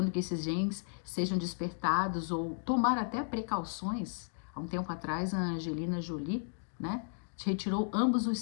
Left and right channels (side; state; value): right; silent; digital silence